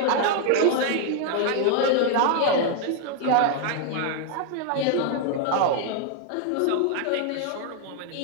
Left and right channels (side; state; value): both; different; correlation 0.00